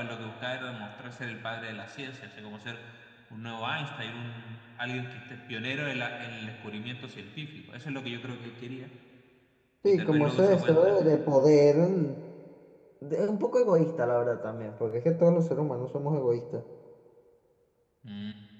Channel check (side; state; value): both; identical; correlation 1.00